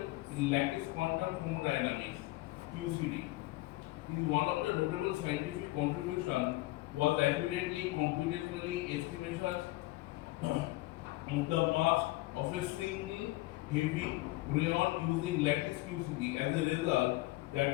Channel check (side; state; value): right; quieter; 19.7 dB